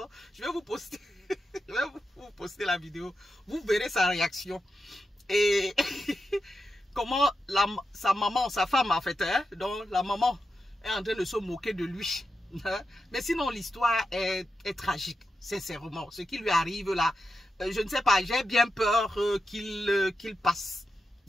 Je vais vous poster. Je vais vous poster la vidéo. Vous verrez sa réaction. Et comment sa maman, sa femme en fait, hein, donc la maman est en train de se moquer de lui. Hein? Mais sinon, l'histoire est tragique, sincèrement. Ce qui lui arrive là, je ne sais pas, j'ai bien peur qu'il passe.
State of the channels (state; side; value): normal; both; correlation 0.88